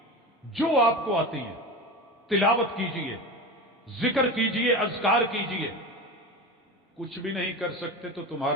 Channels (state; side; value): normal; both; correlation 0.26